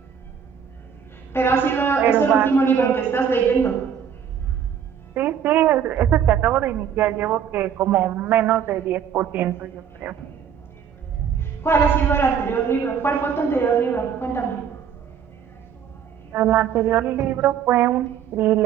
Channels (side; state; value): left; quieter; 8.0 dB